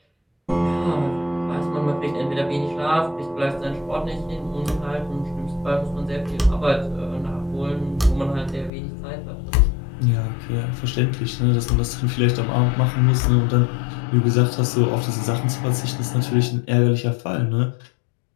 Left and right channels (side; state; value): right; drops out; at 8.7 s